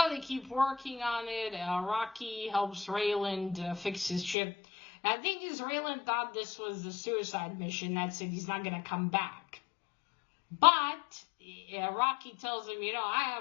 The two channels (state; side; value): drops out; right; at 4.4 s